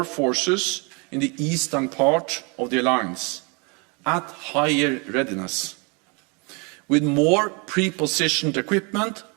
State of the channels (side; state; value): left; quieter; 31.5 dB